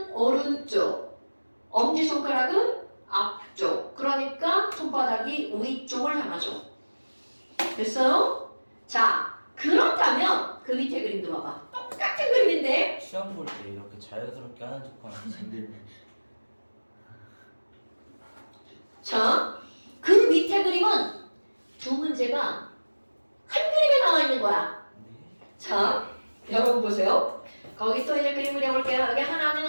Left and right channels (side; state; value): both; inverted; correlation -1.00